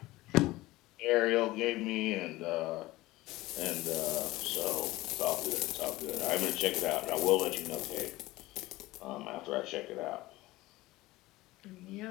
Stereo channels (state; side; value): quieter; right; 18.7 dB